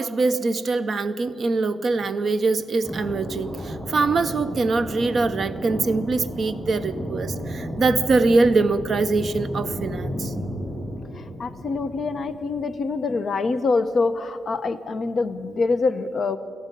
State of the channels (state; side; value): normal; both; correlation 0.87